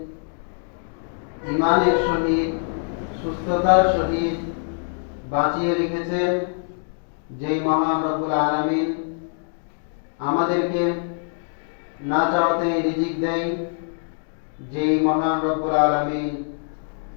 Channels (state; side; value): silent; right; digital silence